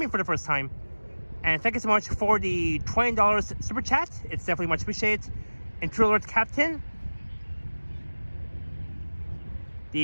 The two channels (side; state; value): both; inverted; correlation -1.00